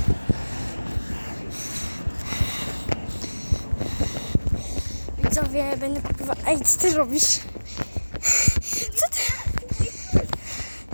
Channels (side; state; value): both; inverted; correlation -1.00